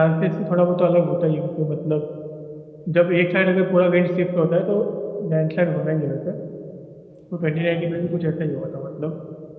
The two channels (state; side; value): identical; both; correlation 1.00